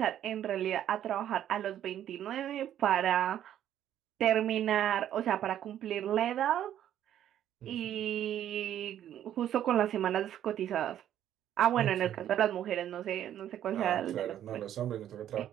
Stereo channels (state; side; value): quieter; left; 11.0 dB